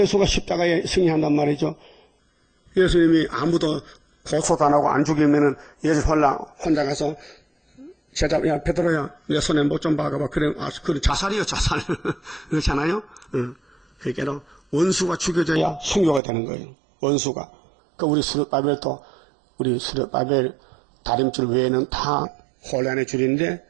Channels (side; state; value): left; drops out; at 16.2 s